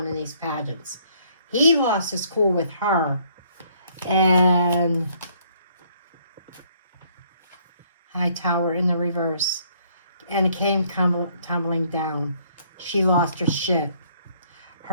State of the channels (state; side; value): inverted; both; correlation -0.65